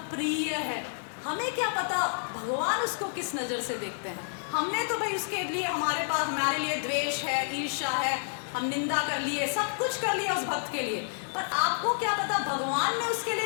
प्रिय है। हमें क्या पता भगवान उसको किस नज़र से देखते हैं? हमने तो भाई उसके लिए हमारे लिए द्वेष है, ईर्ष्या है, हम निंदा कर लिए, सब कुछ कर लिया उस भक्त के लिए, पर आपको क्या पता भगवान ने उसके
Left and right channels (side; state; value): right; silent; digital silence